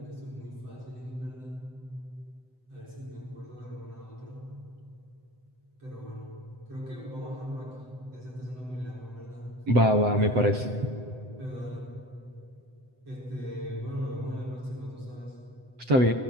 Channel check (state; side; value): late; left; 7.9 ms